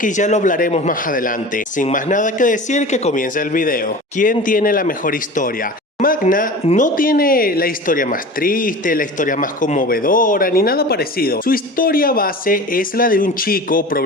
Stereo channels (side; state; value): both; normal; correlation 0.35